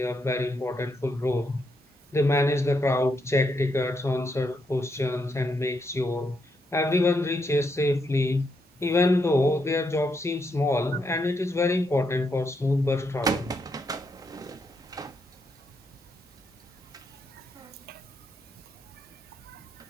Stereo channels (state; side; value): normal; both; correlation 0.79